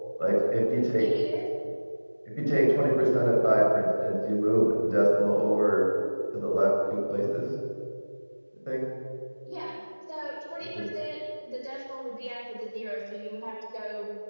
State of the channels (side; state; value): both; inverted; correlation -1.00